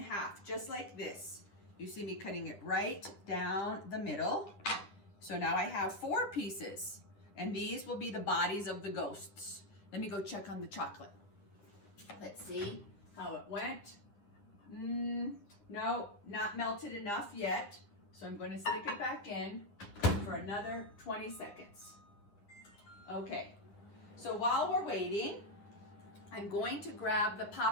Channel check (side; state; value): right; late; 9.9 ms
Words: half, just like this. You see me cutting it right down the middle. So now I have 4 pieces, and these will be the bodies of the ghosts. Let me go check on the chocolate. Let's see how it went. No, not melted enough yet. So I'm going to stick it back in for another 20 seconds. Okay, so while we're waiting, I'm going to grab the